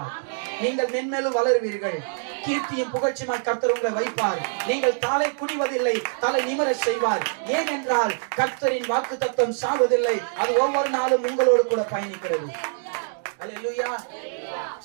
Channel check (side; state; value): left; silent; digital silence